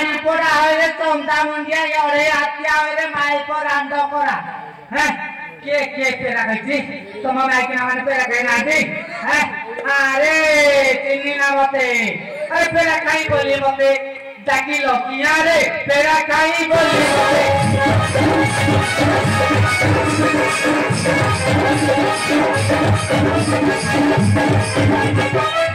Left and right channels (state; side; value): identical; both; correlation 1.00